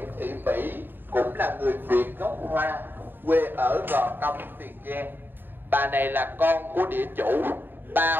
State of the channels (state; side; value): late; left; 0.095 ms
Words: Thị Mỹ, cũng là người Việt gốc Hoa, quê ở Gò Công, Tiền Giang. Bà này là con của địa chủ, ba